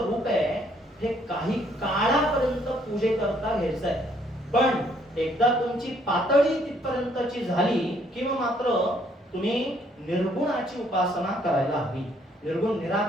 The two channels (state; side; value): normal; both; correlation 0.67